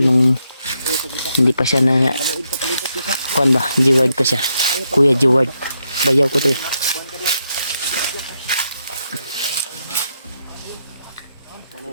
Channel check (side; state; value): both; inverted; correlation -0.81